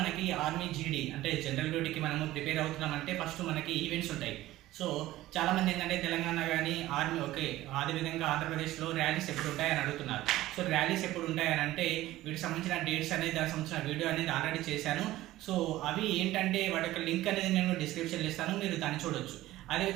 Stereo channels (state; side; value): quieter; left; 15.9 dB